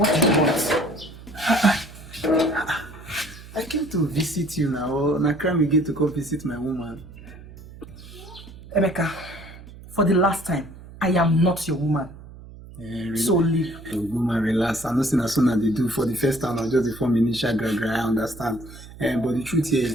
do you want? I came to visit you now, or na crime again to come visit my woman. Emeka, for the last time, I am not your woman. So leave. Oh, woman, relax. I know as soon as they do for the first time, I'll just form initial gra. I understand. But the truth here is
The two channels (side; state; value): right; noise; hum, 17 dB below the sound